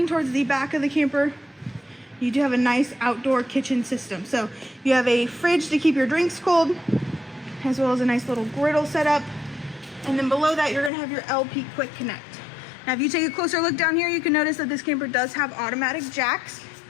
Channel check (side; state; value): right; drops out; at 10.9 s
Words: towards the back of the camper, you do have a nice outdoor kitchen system. So you have a fridge to keep your drinks cold, as well as a nice little griddle setup. And then below that, you're gonna have your LP Quick Connect. Now, if you take a closer look down here, you can notice that this camper does have automatic jacks.